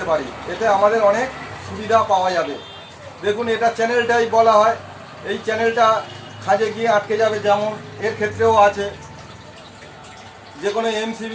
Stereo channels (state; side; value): identical; both; correlation 1.00